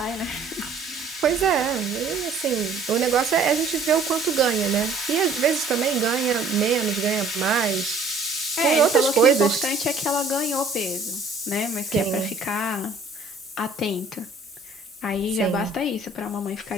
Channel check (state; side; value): quieter; left; 3.6 dB